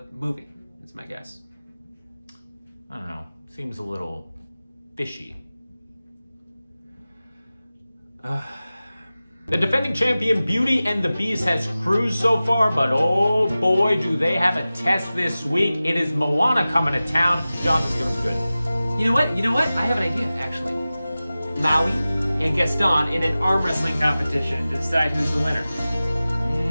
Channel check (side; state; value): both; inverted; correlation -0.96